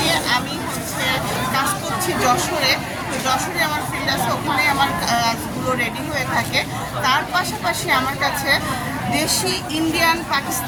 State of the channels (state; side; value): identical; both; correlation 1.00